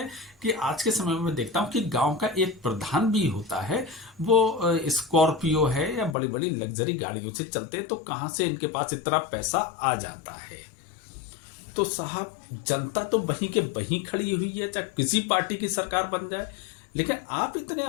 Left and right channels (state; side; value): drops out; right; at 6.2 s